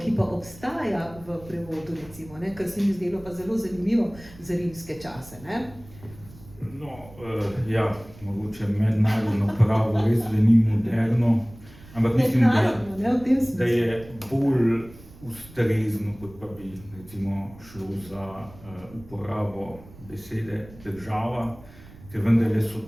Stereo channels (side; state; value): right; noise; rumble, 20 dB below the sound